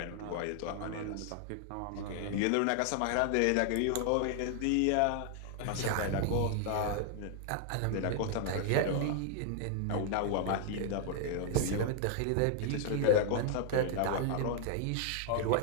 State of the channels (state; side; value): different; both; correlation 0.00